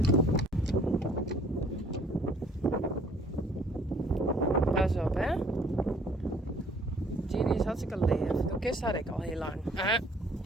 Pas op, hè. Ginny is hartstikke leef. De kist had ik al heel lang.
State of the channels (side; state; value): both; normal; correlation 0.58